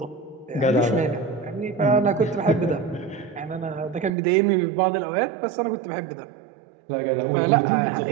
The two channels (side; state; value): left; drops out; at 4.1 s